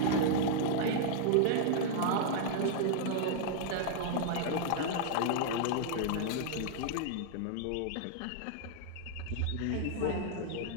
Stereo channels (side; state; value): both; different; correlation -0.01